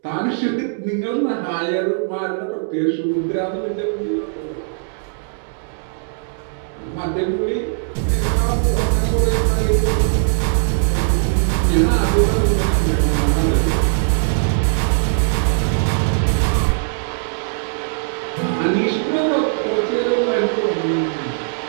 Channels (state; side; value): silent; left; digital silence